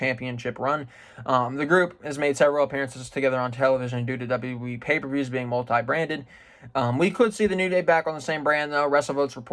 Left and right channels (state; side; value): identical; both; correlation 1.00